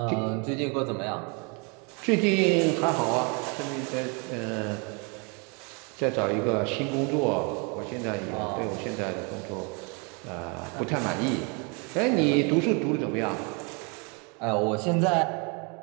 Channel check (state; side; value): quieter; left; 33.3 dB